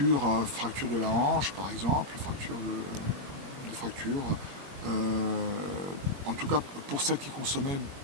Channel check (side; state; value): left; late; 21 ms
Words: de la hanche par exemple, des fractures, en tout cas pour celles qui consommaient